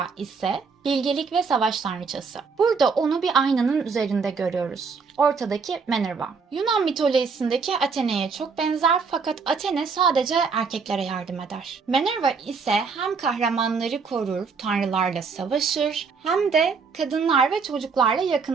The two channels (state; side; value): quieter; left; 5.2 dB